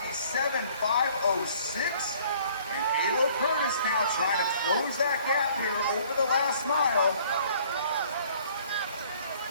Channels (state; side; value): inverted; both; correlation -0.57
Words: 5:06. And Ayla Curtis now trying to close that gap here over the last mile.